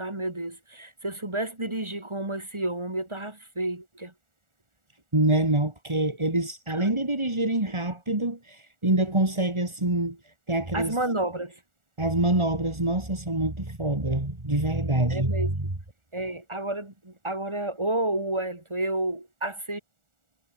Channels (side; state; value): left; late; 1.4 ms